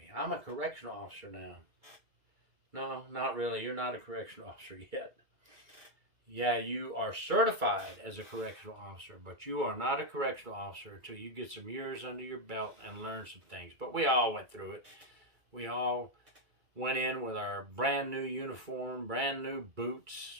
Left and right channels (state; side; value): late; left; 2.3 ms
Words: I'm a correctional officer now. No, not really. You're not a correctional officer yet. Yeah, you are certified as a correctional officer, but you are not a correctional officer until you get some years under your belt and learn some things. But we all went through it. We all went in with our brand new uniform, brand new